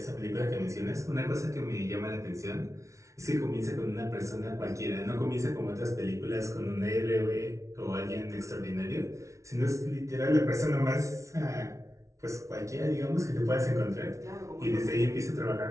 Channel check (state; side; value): late; left; 0.14 ms